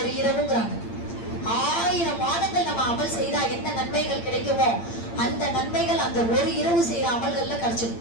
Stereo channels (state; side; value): late; right; 8.7 ms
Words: இரவுங்கிறாங்க. 1000 மாதங்கள் நம்ம அமல் செய்தா என்ன நன்மைகள் கிடைக்குமோ அந்த நன்மைகள் அந்த ஒரு இரவு செய்யற அமல்கள்ல கிடைச்சிடும்.